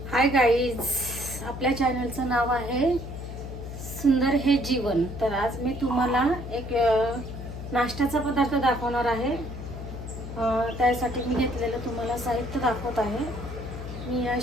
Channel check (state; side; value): noise; left; hum, 9 dB below the sound